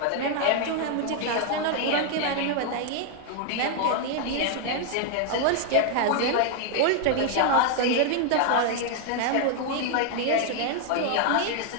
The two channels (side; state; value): both; different; correlation 0.00